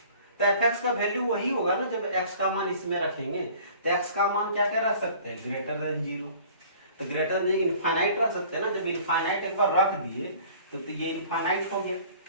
तो fx का वैल्यू वही होगा ना जब x का मान इसमें रखेंगे। तो x का मान क्या क्या रख सकते हैं, ग्रेटर देन 0। तो ग्रेटर देन इनफाइनाइट रख सकते हैं ना, जब इनफाइनाइट एक बार रख दिए तो ये इनफाइनाइट हो गया,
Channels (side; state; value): both; inverted; correlation -0.49